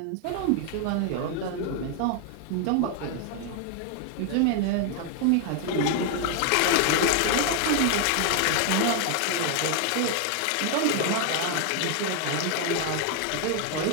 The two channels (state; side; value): different; both; correlation 0.01